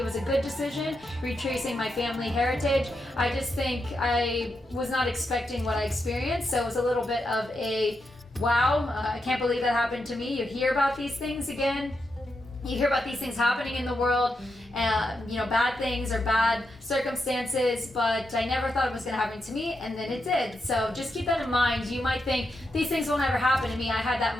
was a good decision, retracing my family heritage. I just think I was not expecting what I experienced, so it was a little bit of a wow, I can't believe that happened to me. You hear about these things again. You hear about these things happening in the world, bad things or bad circumstances, but I never thought it was going to happen to me, and then it did. So just keep that in mind. You might think these things will never happen to me. I had that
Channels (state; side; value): normal; both; correlation 0.85